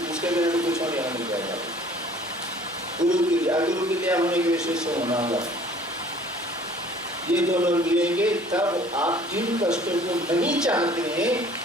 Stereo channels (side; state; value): both; normal; correlation 0.52